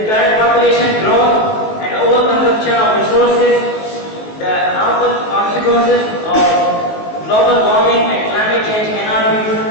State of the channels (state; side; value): late; right; 19 ms